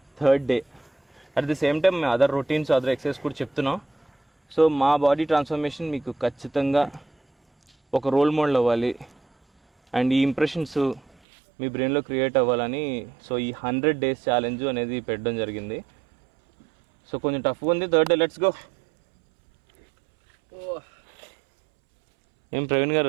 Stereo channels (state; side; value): drops out; left; at 11.1 s